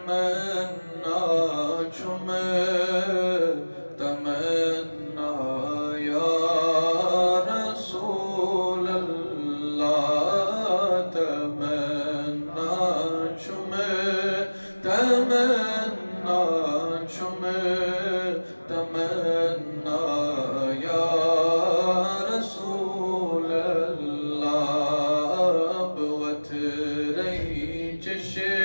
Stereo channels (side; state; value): both; inverted; correlation -1.00